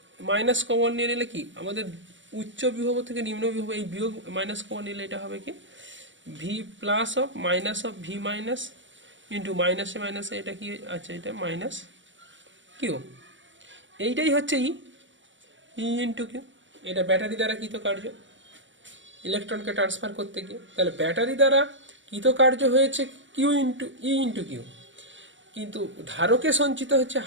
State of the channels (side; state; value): left; late; 0.55 ms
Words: মাইনাস কমন নিয়ে নিলে কি আমাদের উচ্চ বিভব থেকে নিম্ন বিভব, এই বিয়োগ মাইনাস কমন নিলে এটা হবে কি V plus of minus of V minus into মাইনাসে মাইনাসে এটা কি আছে, এটা মাইনাস কিউ। এইটাই হচ্ছে ই ইন্টু কিউ। এটা ব্যাটারি দ্বারা কৃতকার্য ইলেকট্রনকে ট্রান্সফার করতে গিয়ে। তাহলে ব্যাটারি দ্বারা কৃতকার্য হয়েছে কিউ ইন্টু ই ইন্টু কিউ, কিন্তু ধারকে সঞ্চিত হচ্ছে